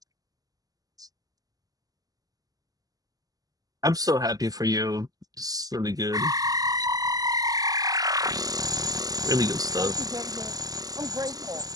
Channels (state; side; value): late; left; 0.17 ms